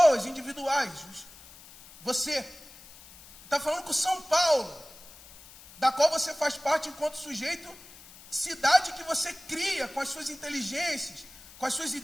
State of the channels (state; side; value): noise; left; hiss, 20 dB below the sound